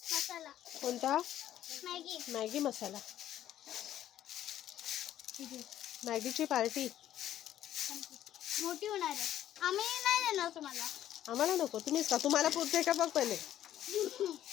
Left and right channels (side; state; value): right; quieter; 11.9 dB